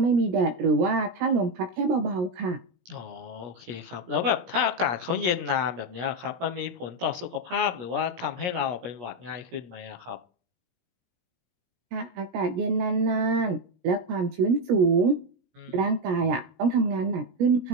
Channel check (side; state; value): left; late; 17 ms